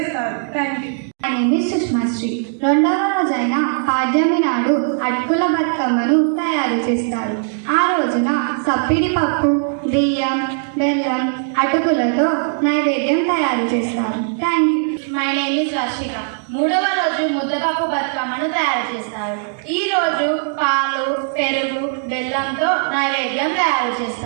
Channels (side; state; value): left; silent; digital silence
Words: Thank you. సుష్మాశ్రీ. 2వ రోజైన పాడ్యమి నాడు అటుకుల బతుకమ్మను తయారు చేస్తారు. ఆ రోజున సప్పిడి పప్పు, బియ్యం, బెల్లం, అటుకులతో నైవేద్యం తయారు చేస్తారు. Thank you. My name is Varshika. 3వ రోజు ముద్దపప్పు బతుకమ్మను తయారు చేస్తారు. ఈ రోజు పాలు, పెరుగు, బెల్లంతో నైవేద్యం తయారు